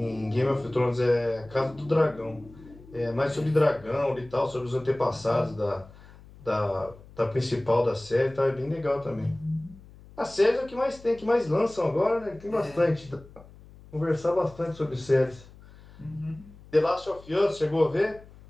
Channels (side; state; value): left; noise; hum, 21 dB below the sound